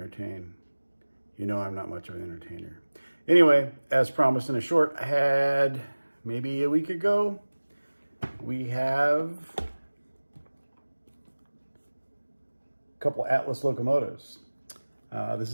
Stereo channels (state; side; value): inverted; both; correlation -1.00